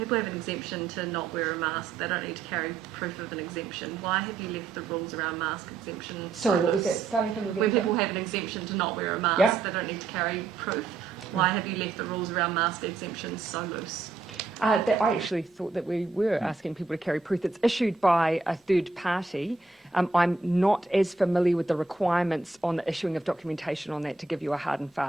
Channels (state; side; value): quieter; left; 4.0 dB